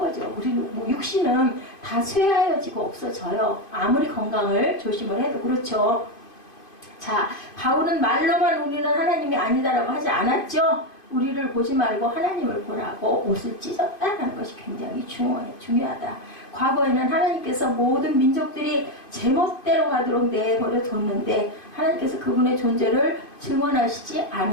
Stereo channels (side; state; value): right; late; 2.5 ms